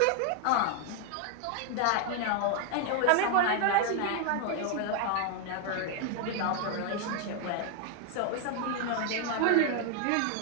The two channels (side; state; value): both; different; correlation 0.00